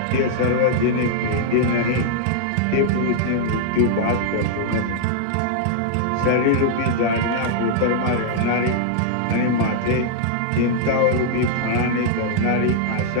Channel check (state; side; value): different; both; correlation -0.01